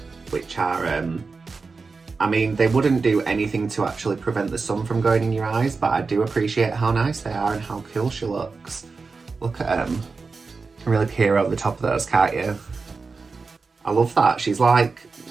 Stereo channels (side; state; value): left; quieter; 4.4 dB